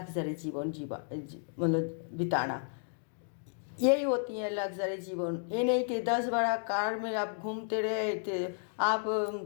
जीवन मतलब बिताना। यही होती है लग्जरी जीवन। ये नहीं कि 10 बड़ा कार में आप घूमते रहे थे, आप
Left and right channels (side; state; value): right; silent; digital silence